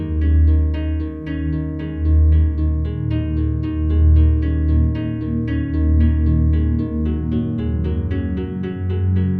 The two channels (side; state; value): both; identical; correlation 1.00